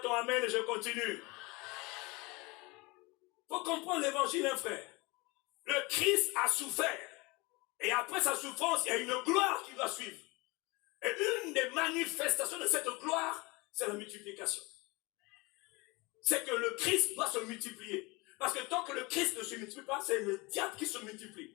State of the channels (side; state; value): right; quieter; 25.0 dB